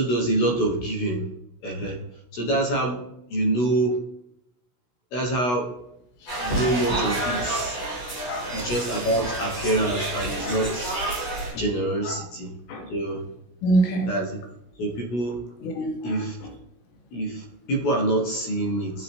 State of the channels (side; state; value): right; late; 16 ms